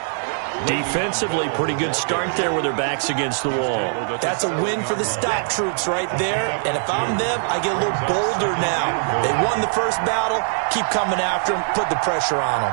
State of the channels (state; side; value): silent; left; digital silence